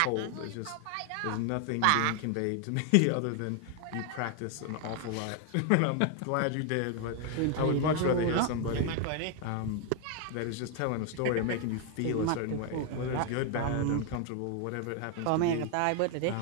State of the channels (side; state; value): both; different; correlation 0.01